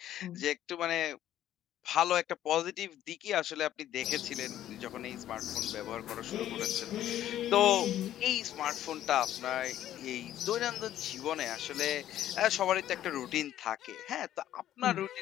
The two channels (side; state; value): right; quieter; 12.2 dB